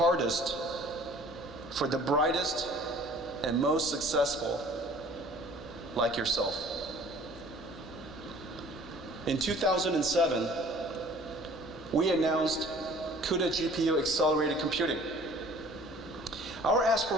for the brightest and most successful like yourself. In 2007, we announced CUDA GPU accelerated computing. Our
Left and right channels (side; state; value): left; noise; hum, 20 dB below the sound